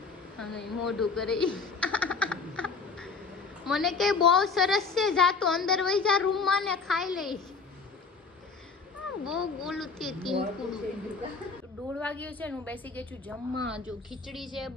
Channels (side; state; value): right; quieter; 4.7 dB